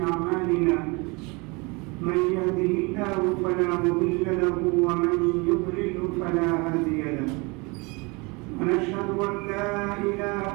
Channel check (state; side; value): quieter; left; 27.6 dB